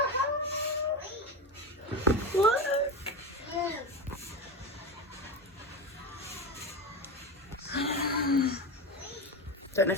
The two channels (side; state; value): both; normal; correlation 0.20